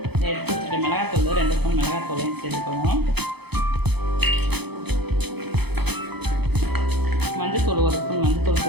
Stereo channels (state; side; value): late; left; 0.98 ms